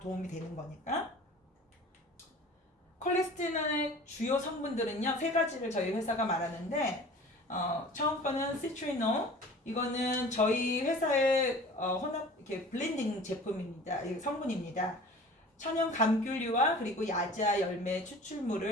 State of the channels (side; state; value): both; normal; correlation 0.42